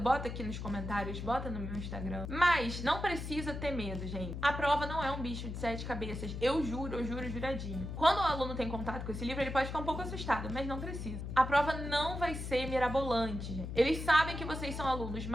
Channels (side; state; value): left; noise; hum, 6 dB below the sound